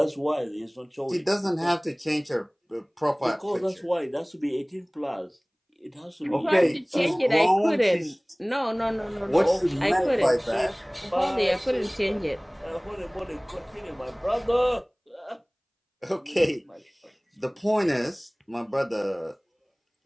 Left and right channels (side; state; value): both; identical; correlation 1.00